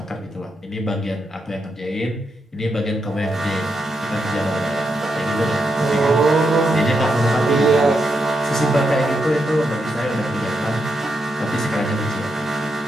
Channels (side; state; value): both; normal; correlation 0.83